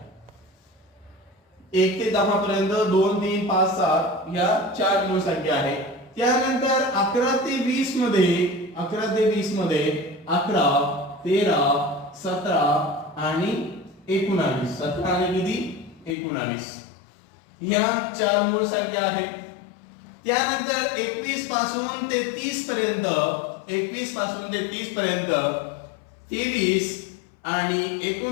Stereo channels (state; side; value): drops out; right; at 16.2 s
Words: 1 ते 10 पर्यंत 2 3 5 7 या 4 मूळ संख्या आहेत. त्यानंतर 11 ते 20 मध्ये 11 13 17 आणि 19, 17 आणि किती 19 या 4 मूळ संख्या आहेत. त्यानंतर 21 पासून ते 30 पर्यंत 23 आणि